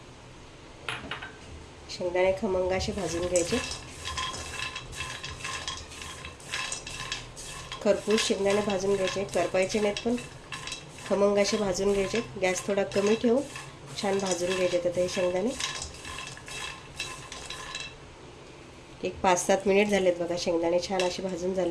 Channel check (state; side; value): identical; both; correlation 1.00